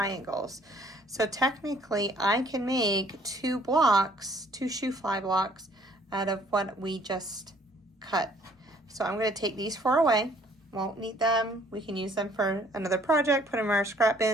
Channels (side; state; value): both; normal; correlation 0.60